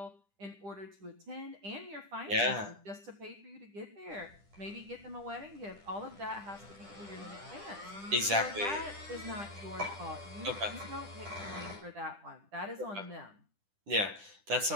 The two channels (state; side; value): late; left; 10 ms